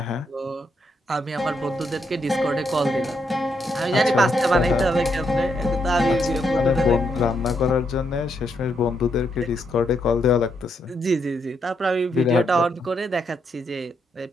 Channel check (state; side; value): normal; both; correlation 0.78